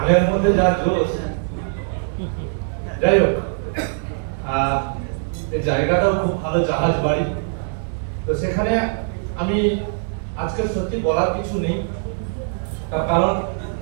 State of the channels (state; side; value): silent; left; digital silence